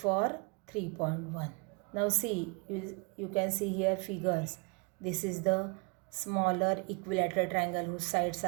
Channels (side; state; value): left; quieter; 30.6 dB